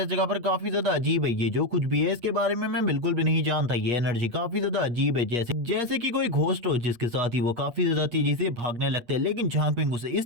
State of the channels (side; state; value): left; late; 8.5 ms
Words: जगह पर काफी ज्यादा अजीब है। ये जो कुछ भी है इसके बारे में मैं बिल्कुल भी नहीं जानता। ये एनर्जी काफी ज्यादा अजीब है, जैसे जैसे कि कोई घोस्ट हो, जिसके साथ ही वो काफी ज्यादा तेजी से भागने लगते हैं। लेकिन झांगपिंग उसे